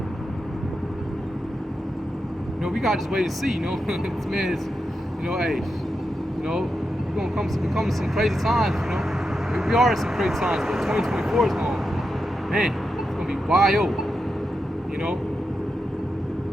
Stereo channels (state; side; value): normal; both; correlation 0.88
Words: we gotta just wait and see. This man is, hey, we're gonna come to some crazy times. We are in some crazy times, but 2024 is going, man, it's gonna be wild.